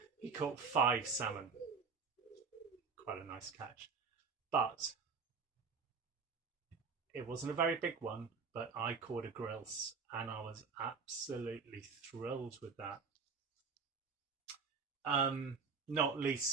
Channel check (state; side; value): quieter; left; 5.2 dB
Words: salmon. Quite a nice catch. But it wasn't a very big one, but I caught a grilse, and I was absolutely thrilled with that. Not